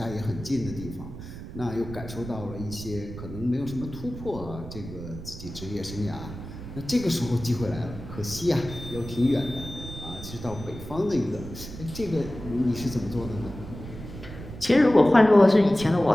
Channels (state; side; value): noise; right; rumble, 11 dB below the sound